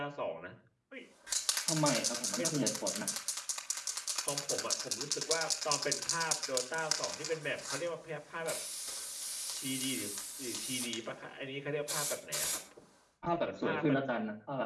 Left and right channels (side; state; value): both; identical; correlation 1.00